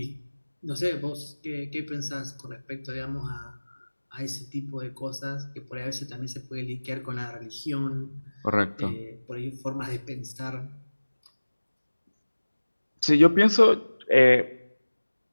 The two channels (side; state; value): both; inverted; correlation -1.00